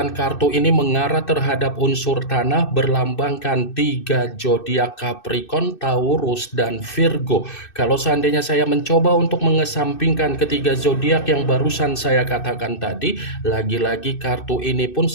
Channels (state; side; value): late; right; 2.6 ms